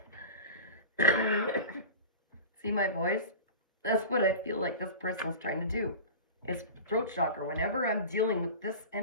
See my voice? That's what I feel like this person's trying to do. It's throat chakra. Whenever I'm dealing with this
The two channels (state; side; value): inverted; both; correlation -0.32